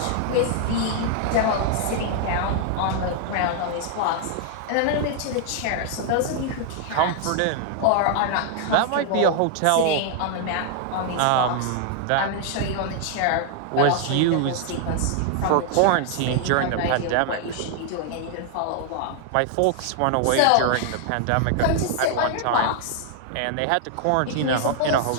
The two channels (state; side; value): different; both; correlation 0.00